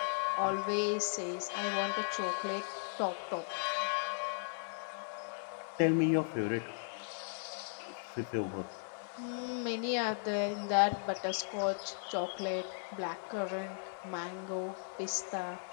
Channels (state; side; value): silent; right; 53 dB below the other